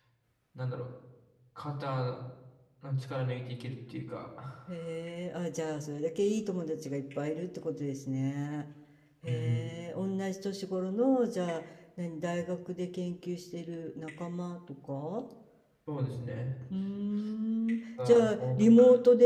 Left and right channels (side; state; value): both; identical; correlation 1.00